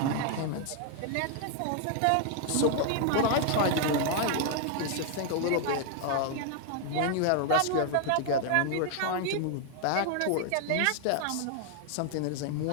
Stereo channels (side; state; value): both; different; correlation 0.00